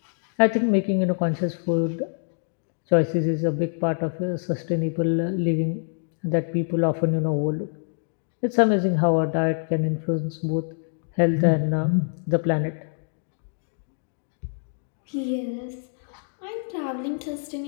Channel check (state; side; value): silent; right; 61 dB below the other